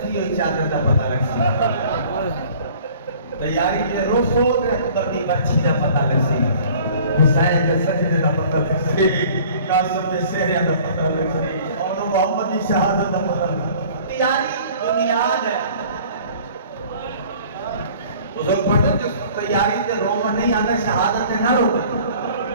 ہوئی چادر دا پتہ لگ سی تیاری تے روسو تے اترتی بچی دا پتہ لگ سی حسین کے سجدے دا پتہ لگ سی قاسم کے سہرے دا پتہ لگ سی اور محمد کی شہادت دا پتہ لگ سی تیاری بنیاد ہے بزرگ پڑھتے جو تیاری تے رومن نہیں آتا شہادت نہ رو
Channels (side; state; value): both; inverted; correlation -0.50